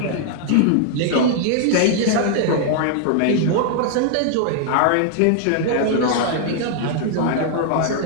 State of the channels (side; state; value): both; different; correlation 0.00